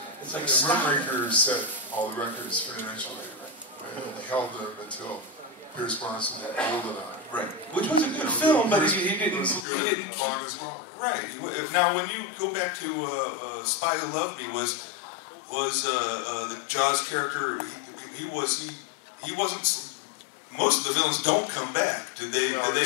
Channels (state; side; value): drops out; right; at 9.7 s